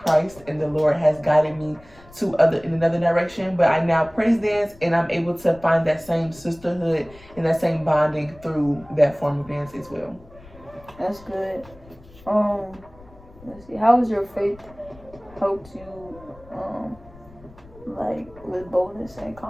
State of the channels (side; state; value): left; noise; rumble, 23 dB below the sound